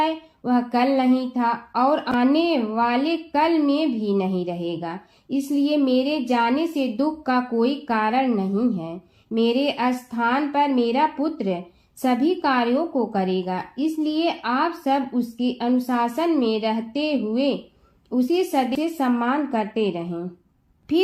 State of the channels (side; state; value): both; identical; correlation 1.00